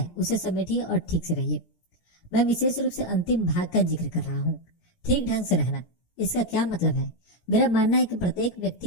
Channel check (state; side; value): late; right; 17 ms